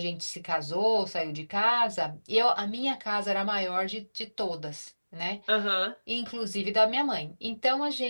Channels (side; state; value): both; inverted; correlation -1.00